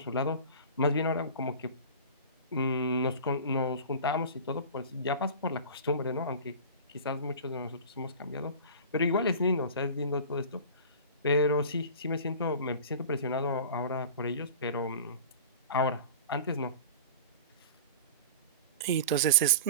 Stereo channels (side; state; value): both; inverted; correlation -0.36